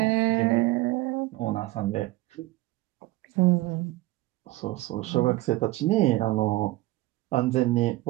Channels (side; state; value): left; quieter; 19.1 dB